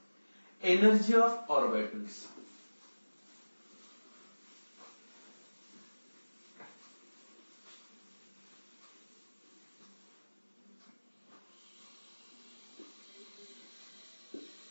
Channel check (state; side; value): inverted; both; correlation -1.00